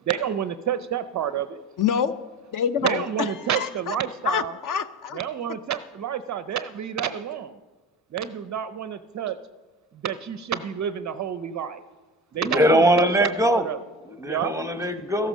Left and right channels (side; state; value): both; normal; correlation 0.31